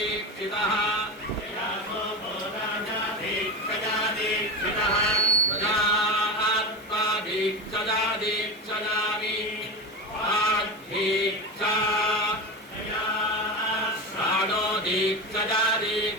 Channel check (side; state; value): both; normal; correlation 0.22